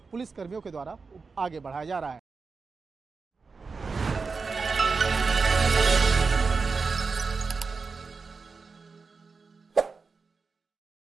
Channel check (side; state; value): left; quieter; 4.6 dB